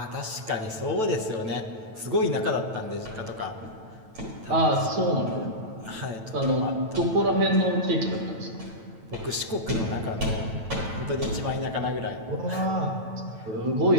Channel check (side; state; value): left; late; 9.1 ms